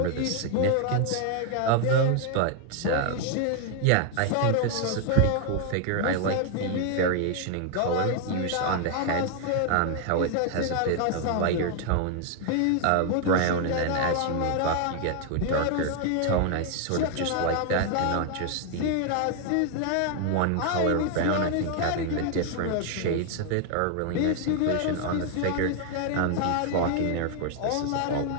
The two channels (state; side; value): different; both; correlation 0.00